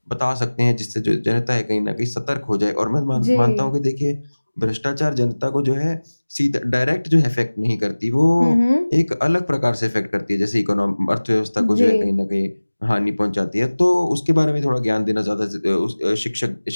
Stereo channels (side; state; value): both; inverted; correlation -1.00